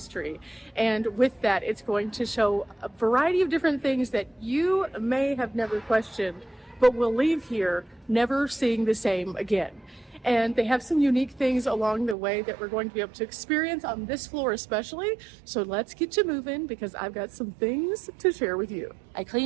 and with that it's going to show a variety of different things that you may have never questioned, but will leave here never seeing the same again. And they have some unique things along the way that we're going to be able to experience on this floor especially. So let's get you moving, because I've got some things to share with you. I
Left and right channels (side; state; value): left; drops out; at 12.2 s